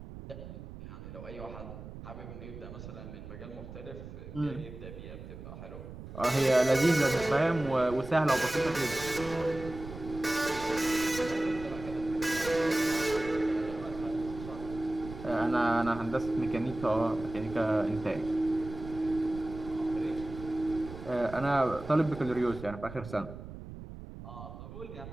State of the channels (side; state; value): right; noise; rumble, 12 dB below the sound